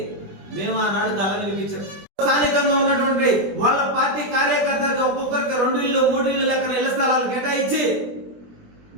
మేము ఆనాడు గల వినిపించాం. స్థానికంగా ఉన్నటువంటి వాళ్ళ పార్టీ కార్యకర్తలకు ఒక్కొక్కరికి 2 ఇళ్ళు 3 ఇళ్ళు లెక్కన ఇళ్ల స్థలాలు కేటాయించి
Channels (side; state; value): left; late; 20 ms